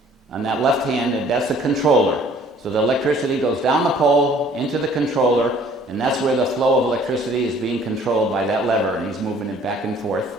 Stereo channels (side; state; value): both; normal; correlation 0.56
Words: On that left hand, that's the controller. So the electricity goes down the pole into the controller, and that's where the flow of electricity is being controlled by that lever, and he's moving it back and forth.